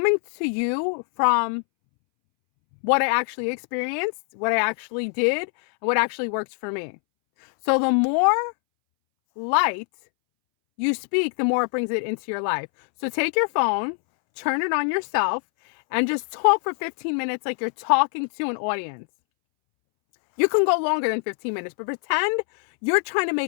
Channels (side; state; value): right; silent; 63 dB below the other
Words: to you from what I actually experienced, what I actually did, and what actually works for me. So the more light you speak, the more it brings it into your life. So take your phone, turn it on yourself, and just talk for 15 minutes like you're talking to an audience. You can go longer than 15 minutes, but pretend you're trying to